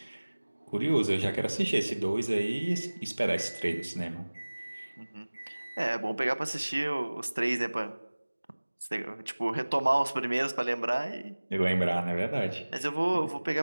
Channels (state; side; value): inverted; both; correlation -1.00